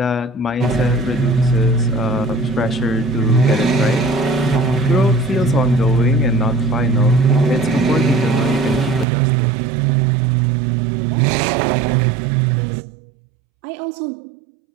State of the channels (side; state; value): left; drops out; at 9.1 s